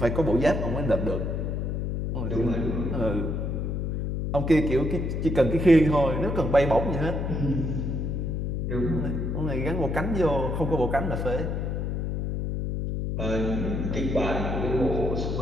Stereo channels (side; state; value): left; noise; hum, 1 dB below the sound